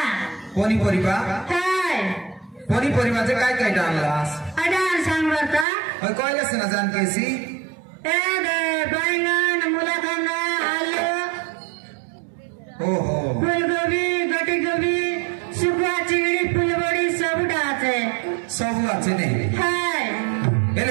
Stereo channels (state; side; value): drops out; left; at 5.7 s